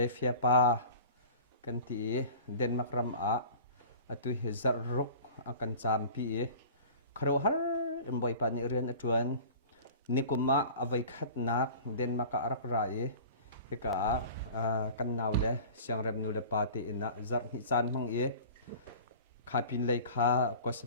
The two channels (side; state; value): both; inverted; correlation -0.41